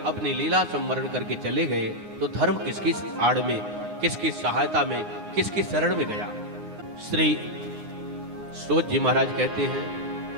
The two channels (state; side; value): late; left; 9.6 ms